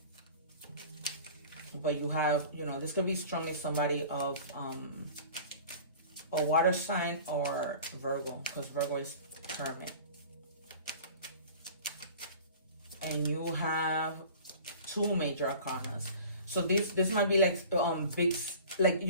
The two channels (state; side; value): inverted; both; correlation -0.42